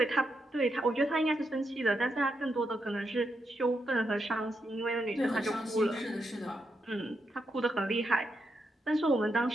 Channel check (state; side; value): normal; both; correlation 0.83